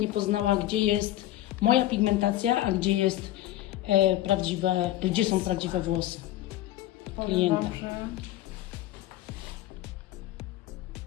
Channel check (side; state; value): right; quieter; 14.4 dB